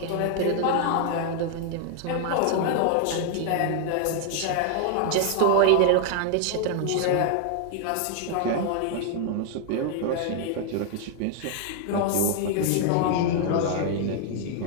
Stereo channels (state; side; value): different; both; correlation 0.00